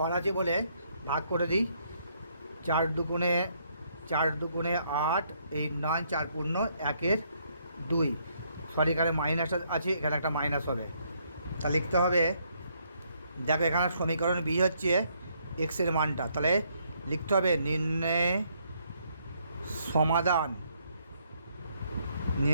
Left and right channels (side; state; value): both; inverted; correlation -0.71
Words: আছে বলে ভাগ করে দিই। 4 দুগুণে 8, এই 9, 4 পূর্ণ 1/2। সরি, এখানে মাইনাস আছে, এখানে একটা মাইনাস হবে। তা লিখতে হবে, দেখো এখানে সমীকরণ বি হচ্ছে এক্সের মানটা, তাহলে লিখতে হবে নির্ণয়